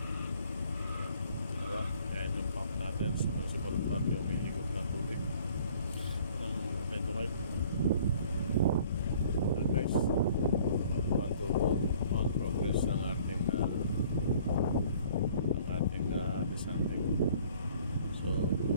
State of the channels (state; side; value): inverted; both; correlation -0.55